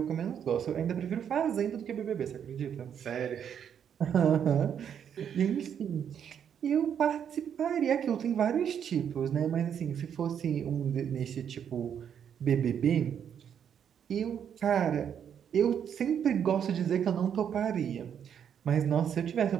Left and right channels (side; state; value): left; quieter; 8.4 dB